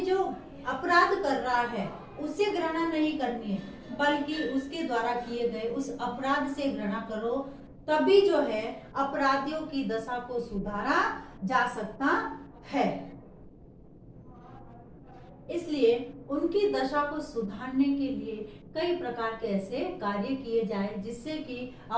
जो अपराध कर रहा है उससे घृणा नहीं करनी है, बल्कि उसके द्वारा किए गए उस अपराध से घृणा करो, तभी जो है अपराधियों की दशा को सुधारा जा सकता है। इसलिए उनकी दशा को सुधारने के लिए कई प्रकार के ऐसे कार्य किए जाए जिससे कि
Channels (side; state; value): both; identical; correlation 1.00